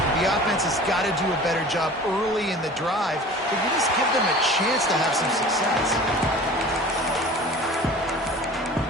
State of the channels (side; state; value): both; normal; correlation 0.42